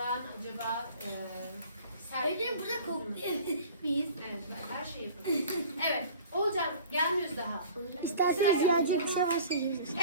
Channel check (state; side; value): inverted; both; correlation -0.44